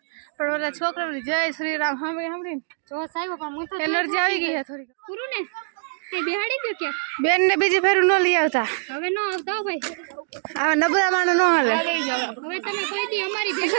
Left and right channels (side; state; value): left; silent; digital silence